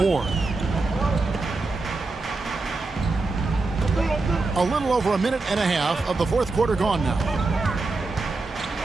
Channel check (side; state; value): left; quieter; 3.6 dB